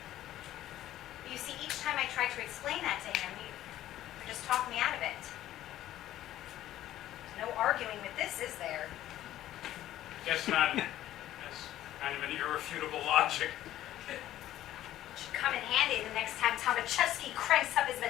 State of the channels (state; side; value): quieter; right; 13.4 dB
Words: You see, each time I tried to explain that to him, you just talked me out of it. There's no arguing with this, is there? Guess not. That's kind of an irrefutable logic. It should come in handy the next time Tomaszewski cranks up his